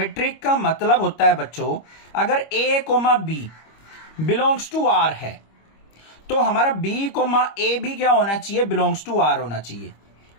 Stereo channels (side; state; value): right; late; 25 ms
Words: का मतलब होता है बच्चों, अगर a, b belongs to r है तो हमारा b, a भी क्या होना चाहिए, बिलोंग्स टू r होना चाहिए।